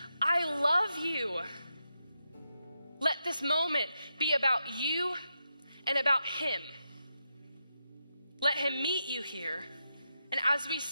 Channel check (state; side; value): inverted; both; correlation -0.86